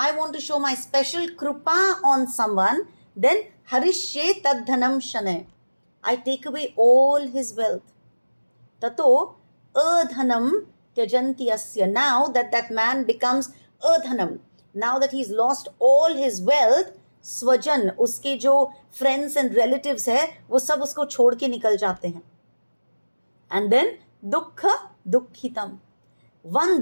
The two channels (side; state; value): both; inverted; correlation -1.00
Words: want to show my special krupa on someone, then harishye tadhanam shane. I take away all his wealth. Tato adhanam tyajanti asya. Now that man becomes adhanam, now that he's lost all his wealth, स्वजन, उसके जो friends and relatives है, वो सब उसको छोड़ के निकल जाते हैं. एंड देन दुख दुखितम,